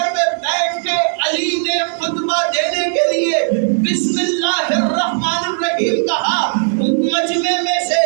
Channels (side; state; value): left; silent; 68 dB below the other